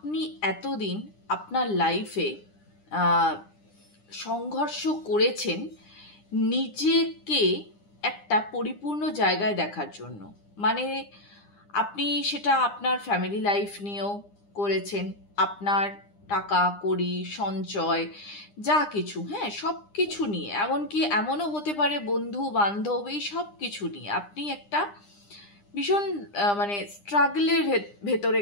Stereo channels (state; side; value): late; right; 9.9 ms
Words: এতদিন আপনার লাইফে সংঘর্ষ করেছেন নিজেকে একটা পরিপূর্ণ জায়গায় দেখার জন্য। মানে আপনি সেটা আপনার ফ্যামিলি লাইফ নিয়েও করেছেন, আপনার টাকা কড়ি সঞ্চয় যা কিছু, হ্যাঁ, সব কিছু নিয়ে, এমনকি এমনও হতে পারে বন্ধু বান্ধব, এই সব কিছু নিয়ে আপনি একটা ভীষণ মানে স্ট্রাগলের ভেতরে